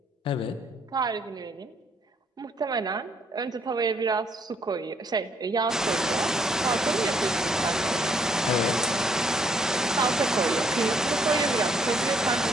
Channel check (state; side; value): normal; both; correlation 0.68